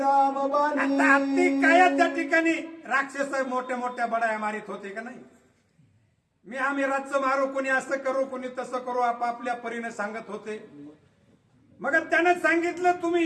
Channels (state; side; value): identical; both; correlation 1.00